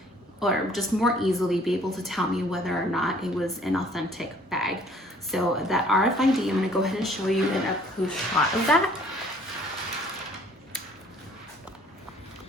just more easily be able to tell me whether or not it was an authentic bag. So that RFID, I'm gonna go ahead and show you an up-close shot of that.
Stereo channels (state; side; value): normal; both; correlation 0.56